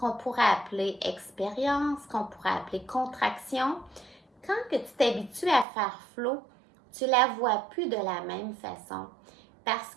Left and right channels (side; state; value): left; drops out; at 5.7 s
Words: pourrait appeler expérience, qu'on pourrait appeler contraction, quand que tu t'habitues à faire flow, tu la vois plus de la même façon. Parce